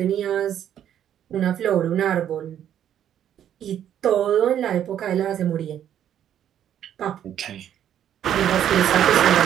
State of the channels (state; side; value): quieter; left; 10.3 dB